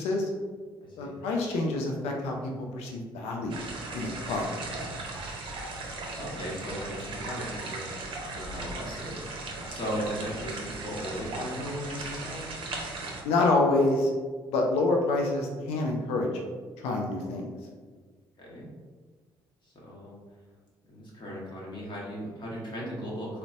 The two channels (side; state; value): both; normal; correlation 0.54